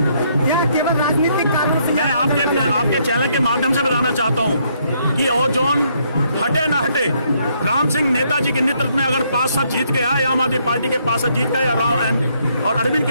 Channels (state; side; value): inverted; both; correlation -0.71